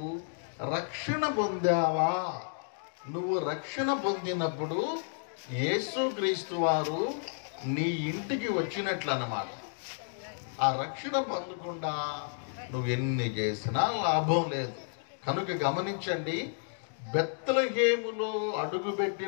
రక్షణ పొందావా? నువ్వు రక్షణ పొందినప్పుడు యేసుక్రీస్తు వారు నీ ఇంటికి వచ్చినట్లు అన్నమాట. ఆ రక్షణ పొందకుండా నువ్వు ఎన్ని చేసినా లాభం లేదు. కనుక గమనించండి, బెత్లెహేములో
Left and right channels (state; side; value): silent; right; digital silence